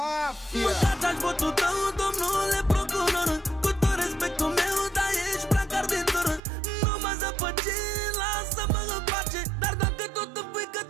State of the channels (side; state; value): left; drops out; at 6.4 s